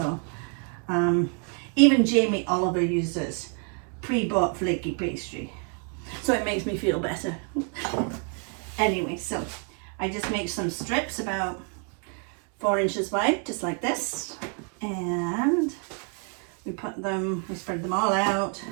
even Jamie Oliver uses pre-bought flaky pastry, so it makes me feel better. Anyway, so I just make some strips about 4 inches wide, just like this, and we spread them all out,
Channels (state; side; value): quieter; left; 39.7 dB